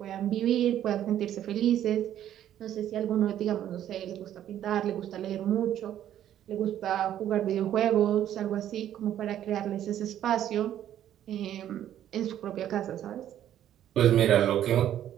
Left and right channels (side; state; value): left; quieter; 11.3 dB